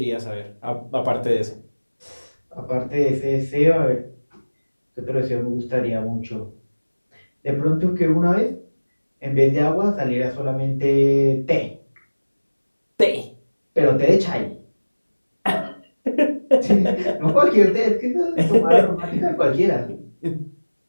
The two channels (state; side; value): inverted; both; correlation -1.00